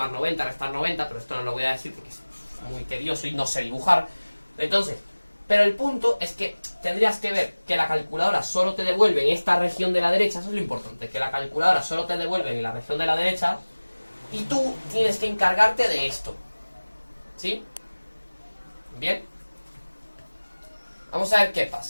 90, restar 90, pero esto no lo voy a decir porque es muy tedioso y no sé dibujar. Entonces, pero el punto es que tendrías que ver que la calculadora solo te devuelve en esta región de la derecha, eso es lo importante, que la calculadora solo te devuelve en la región de la derecha y tú tienes que encargarte de esto. ¿Sí? Bien. Vamos a ver qué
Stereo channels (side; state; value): both; inverted; correlation -1.00